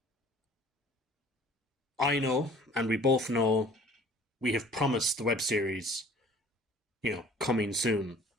I know, and we both know, we have promised the web series, coming soon.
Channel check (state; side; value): normal; both; correlation 0.50